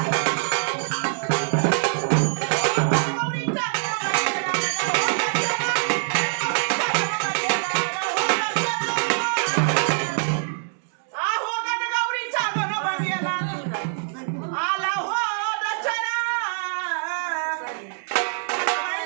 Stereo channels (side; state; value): left; silent; digital silence